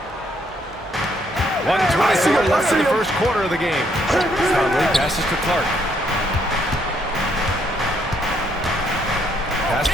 1:24 left in the first quarter of the game. Conley passes to Clark. Pass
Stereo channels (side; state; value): both; normal; correlation 0.71